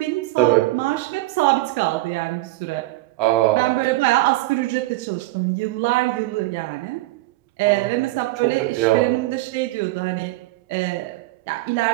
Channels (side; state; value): left; quieter; 18.8 dB